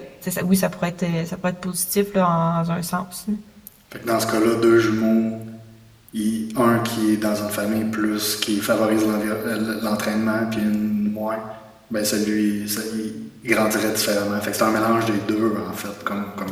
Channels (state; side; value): identical; both; correlation 1.00